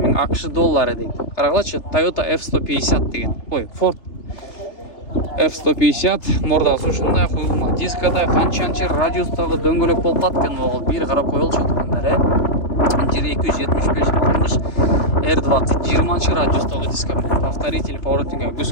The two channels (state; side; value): late; right; 3.3 ms